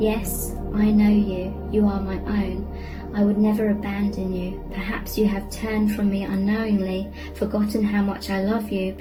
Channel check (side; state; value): both; identical; correlation 1.00